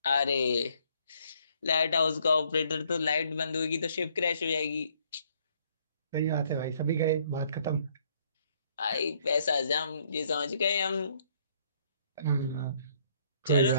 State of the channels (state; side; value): inverted; both; correlation -0.66